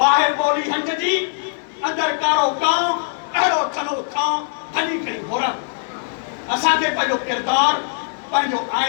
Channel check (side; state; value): right; silent; digital silence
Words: ॿोली हंज जी अंदरि कारो कांव, अहिड़ो थलो थांव हली खणी घोरा। असांखे पंहिंजो किरदारु, पंहिंजो